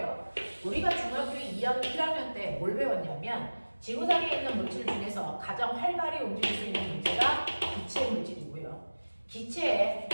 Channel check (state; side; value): inverted; both; correlation -1.00